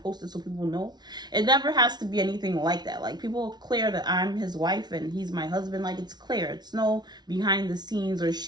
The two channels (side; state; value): left; late; 0.20 ms